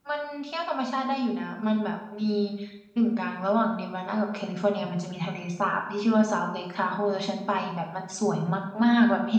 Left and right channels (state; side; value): identical; both; correlation 1.00